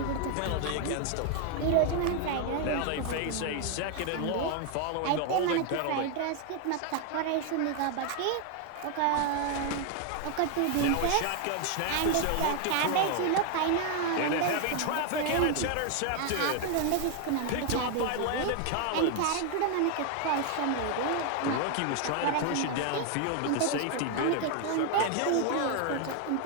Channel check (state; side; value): different; both; correlation 0.01